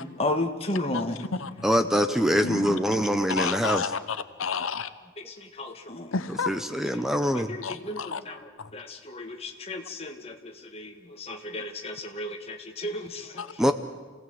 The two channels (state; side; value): normal; both; correlation 0.63